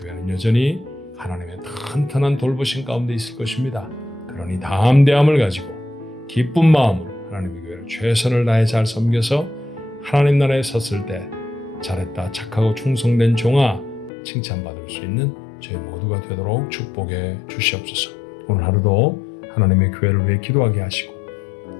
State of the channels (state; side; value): drops out; right; at 14.1 s